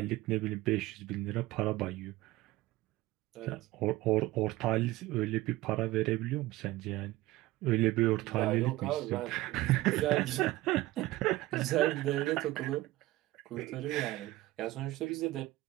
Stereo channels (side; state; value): left; quieter; 17.8 dB